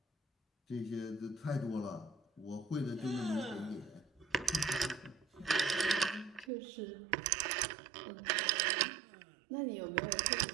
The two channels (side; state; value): left; drops out; at 6.5 s